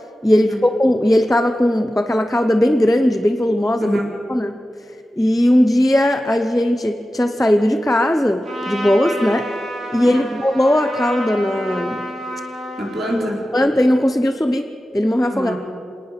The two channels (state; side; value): normal; both; correlation 0.94